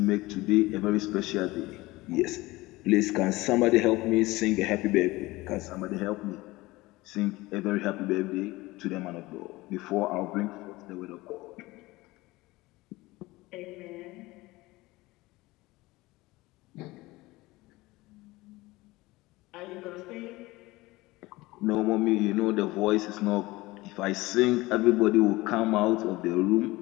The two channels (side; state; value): right; quieter; 20.3 dB